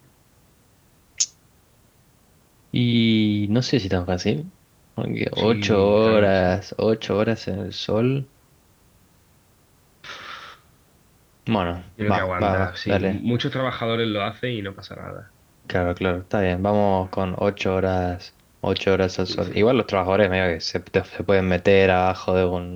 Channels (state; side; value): identical; both; correlation 1.00